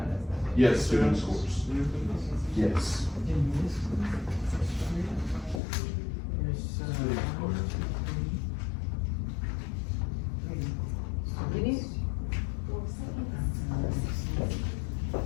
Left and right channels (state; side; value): drops out; right; at 5.6 s